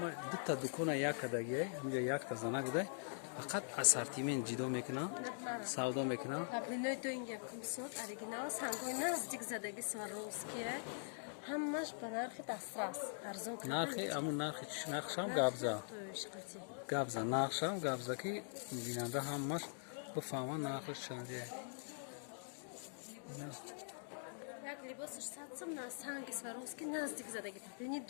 дута дукона як кадагия ҳамҷа якта зана гудай фақат ассортимент ҷидо мекунам, савдо мекунам. Паплиной доинга кумсот оригинал сангой наздик задаги Сваровские. Ҳамаш ба нархи дастрас арзон карда. Нархи амун нархи нархшам габза. Габза нархшам габза ки бинанда ҳамаш бифаҳма нархиш чандие. Як либосиш 100 сом на санги Сваровский наздик задаги паплини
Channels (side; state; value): right; silent; digital silence